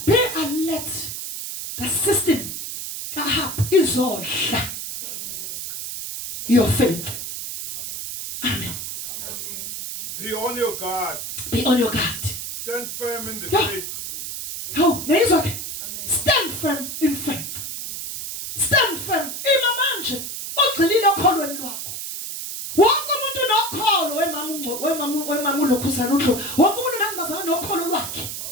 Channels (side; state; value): right; noise; hiss, 6 dB below the sound